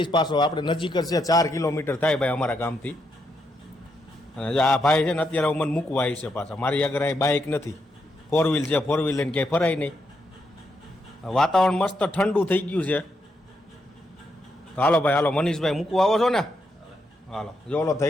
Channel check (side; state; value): both; normal; correlation 0.80